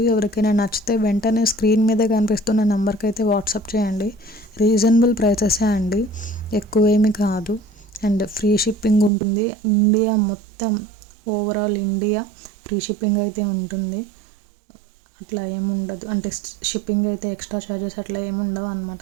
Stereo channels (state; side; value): drops out; left; at 9.1 s